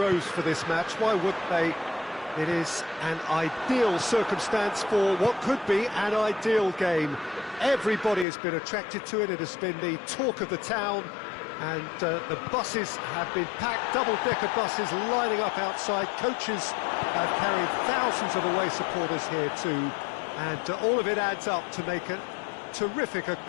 for this match. Why wouldn't they? It is an ideal circumstance for what could be an ideal game. Everybody has been attracted to it. It has been the talk of the town. And the buses have been packed, double-decker buses lining up outside. Coaches have carried thousands of away supporters here too. And all of it adds up to make a terrific, a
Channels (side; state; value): right; drops out; at 8.2 s